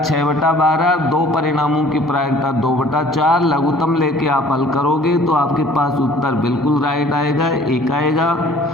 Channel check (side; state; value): both; normal; correlation 0.52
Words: 2 परिणामों की प्रायिकता 2/4। लघुत्तम लेके आप हल करोगे तो आपके पास उत्तर बिल्कुल राइट आएगा, 1 आएगा।